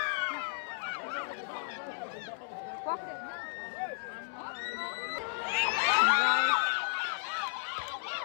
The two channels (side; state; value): right; silent; 55 dB below the other